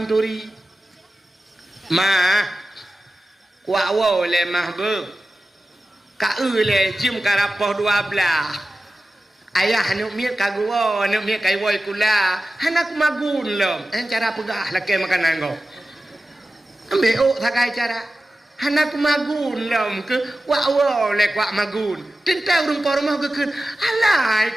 turi mah kuat wo le mah be ka le jim karapoh 12 ayah anu miat kagua anu miat kai woi kula hanak magun lom cara pegah laki makanan go ambil sakai cara hanak magun lom ke wa le kwa magun tentang rumah rumah ke alai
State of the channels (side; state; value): both; normal; correlation 0.94